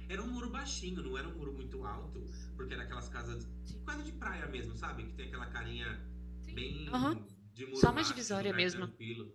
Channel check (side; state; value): both; identical; correlation 1.00